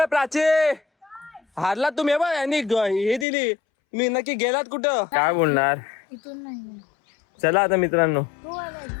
प्राची हारलात तुम्ही बा यांनी हे दिली मी नक्की गेलात कुठं? काय बोलणार? इथून नाही चला आता मित्रांनो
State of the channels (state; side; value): drops out; right; at 3.2 s